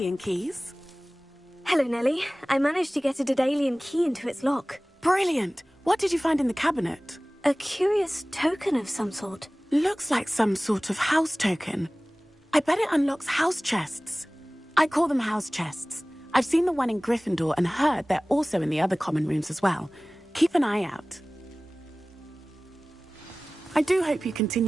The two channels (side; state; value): both; normal; correlation 0.98